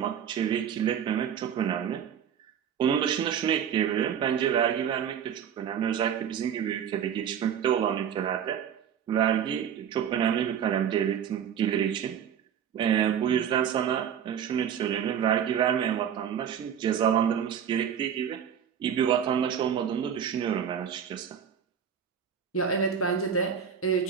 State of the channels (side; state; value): left; quieter; 8.5 dB